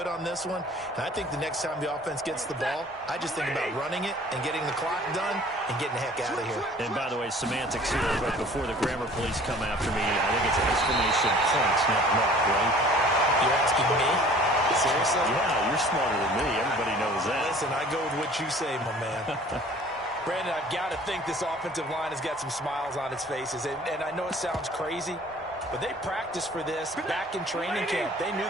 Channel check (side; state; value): both; normal; correlation 0.50